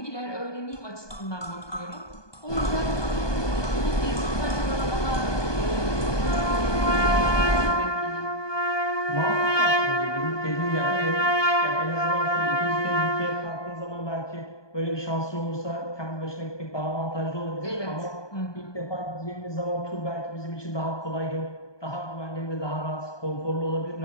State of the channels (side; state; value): right; late; 1.2 ms